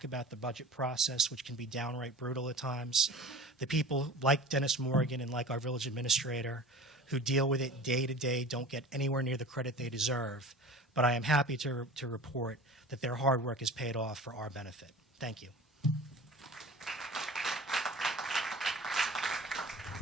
about the budget process, which can be downright brutal at times. The people like Dennis Morgan and like our village administrator who deal with it day to day don't get anywhere near the credit they deserve. But I am happy to report that their hard work is paid off for our benefit. Thank you.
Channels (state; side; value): normal; both; correlation 0.39